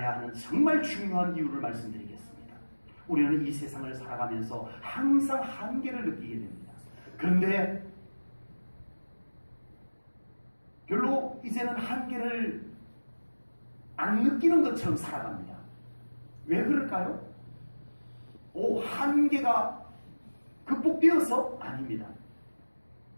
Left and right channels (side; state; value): both; inverted; correlation -1.00